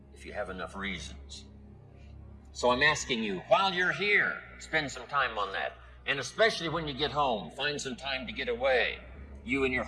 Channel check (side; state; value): both; identical; correlation 1.00